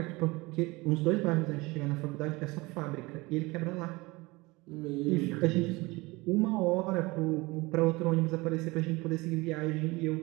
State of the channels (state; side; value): quieter; left; 23.0 dB